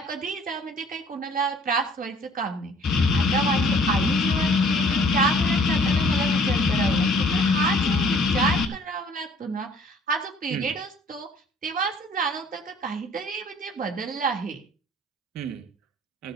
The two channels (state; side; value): normal; both; correlation 0.55